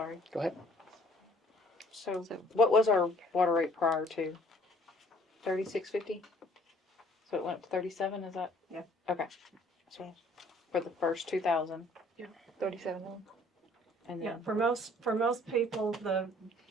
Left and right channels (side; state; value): both; normal; correlation 0.57